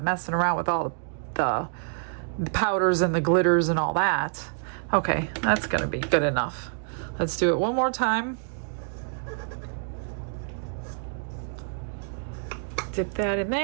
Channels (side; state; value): left; silent; digital silence